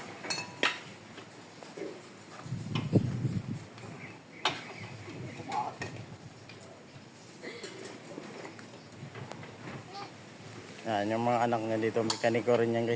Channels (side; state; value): both; identical; correlation 1.00